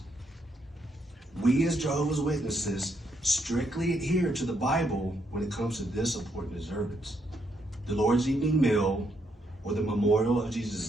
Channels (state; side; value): normal; both; correlation 0.76